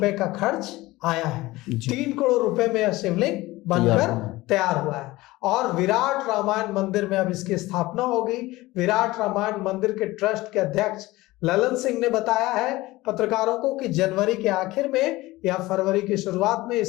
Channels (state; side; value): quieter; right; 19.2 dB